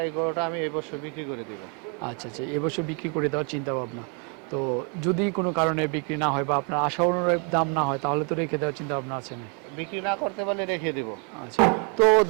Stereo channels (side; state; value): left; quieter; 36.2 dB